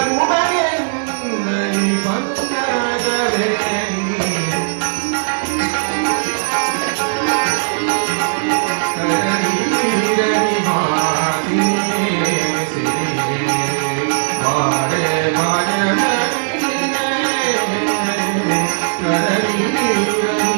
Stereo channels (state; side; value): silent; left; 58 dB below the other